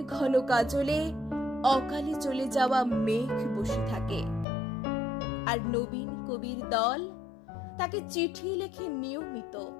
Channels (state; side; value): drops out; right; at 4.5 s